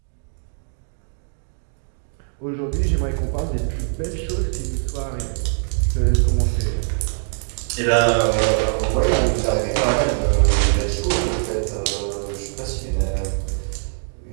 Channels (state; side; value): silent; left; digital silence